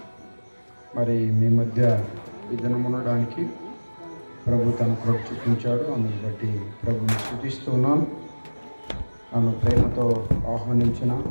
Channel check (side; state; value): both; inverted; correlation -1.00